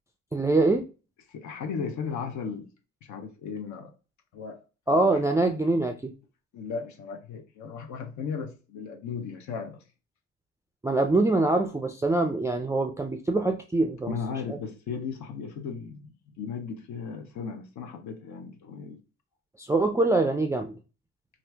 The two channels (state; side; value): normal; both; correlation 0.66